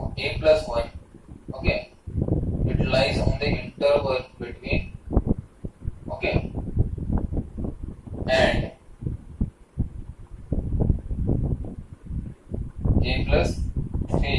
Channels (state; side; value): identical; both; correlation 1.00